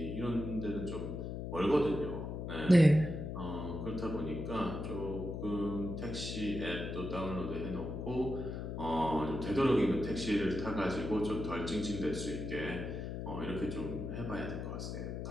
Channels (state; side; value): noise; left; hum, 5 dB below the sound